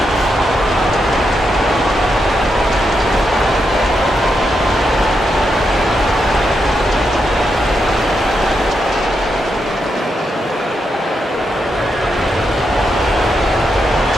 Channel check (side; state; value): both; normal; correlation 0.83